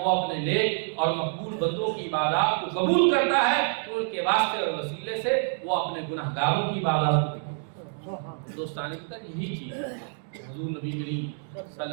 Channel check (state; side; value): silent; left; 56 dB below the other